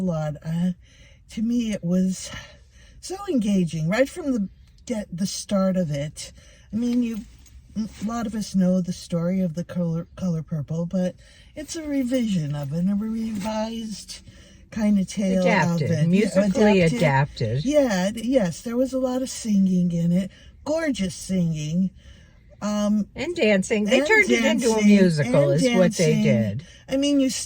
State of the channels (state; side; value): identical; both; correlation 1.00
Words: lot. To me, it was so engaging right from the start of it. I mean, a lot of us know the story of The Color Purple, but it's a revision of it, a revised kind of tale of it. Musically adapted. Yeah, yes, there was a lot of singing in it, gorgeous singing. And dancing. They turned it into a musical is what they did. I mean, you